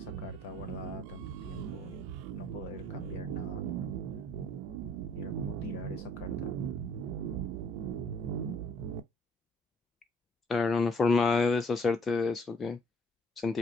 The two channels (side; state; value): both; normal; correlation 0.61